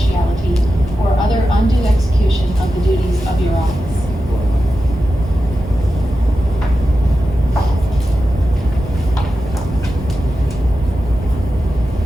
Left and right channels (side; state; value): both; normal; correlation 0.91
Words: or other undue execution of the duties of your office.